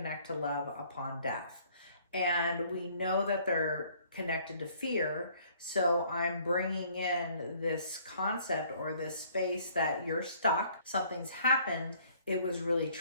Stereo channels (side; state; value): both; inverted; correlation -0.60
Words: to love upon death. And we know that they're connected to fear. So I'm bringing in this concept or this space that you're stuck. Something's happened. It was really